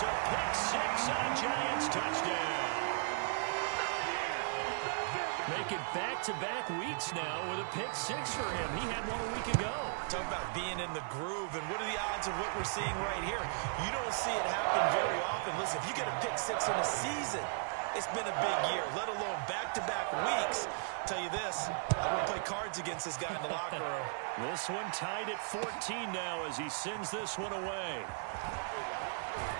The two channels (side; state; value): left; silent; 54 dB below the other